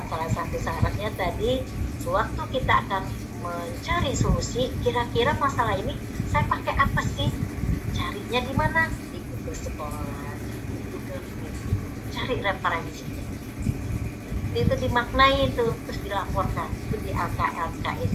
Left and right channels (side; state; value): both; identical; correlation 1.00